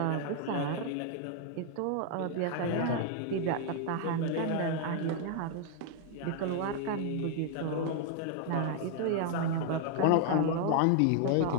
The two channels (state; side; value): different; both; correlation 0.00